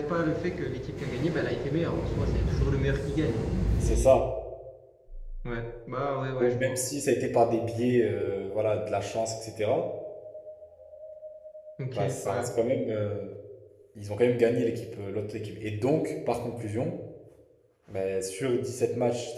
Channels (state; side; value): identical; both; correlation 1.00